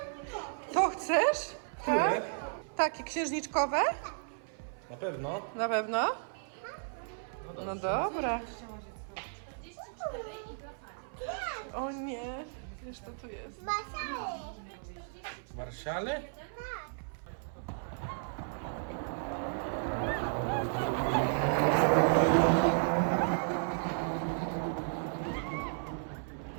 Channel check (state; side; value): silent; left; 55 dB below the other